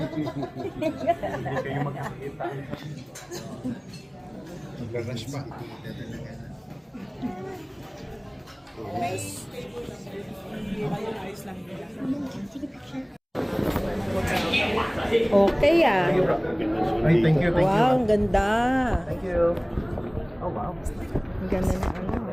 kayo magkakita. Magkakash pa. Okay ah. Ay, thank you, thank you. Wow, ang ganda. Thank you. Oh, wow. Ang ganda ng ano.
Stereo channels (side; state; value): both; identical; correlation 1.00